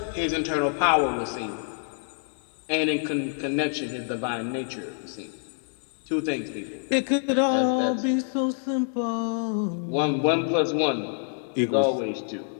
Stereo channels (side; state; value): right; silent; 60 dB below the other